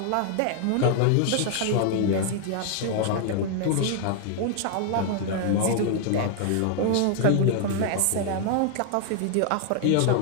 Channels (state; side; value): different; both; correlation 0.00